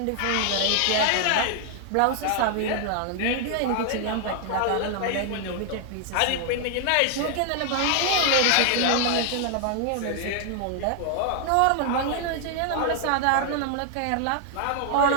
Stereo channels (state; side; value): different; both; correlation 0.00